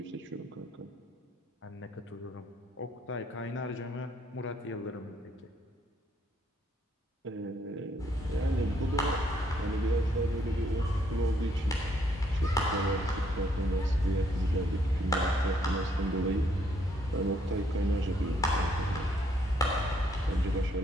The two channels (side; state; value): both; normal; correlation 0.70